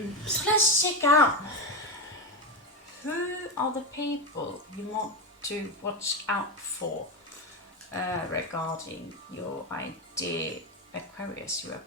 So let's check out who are the people you want to watch out for regarding your idea. Aquarius, you are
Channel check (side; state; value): both; normal; correlation 0.14